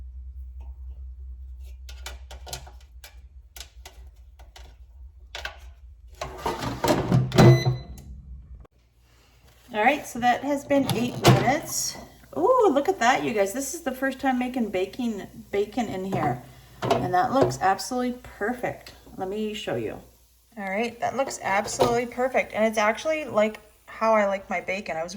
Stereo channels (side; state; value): both; identical; correlation 1.00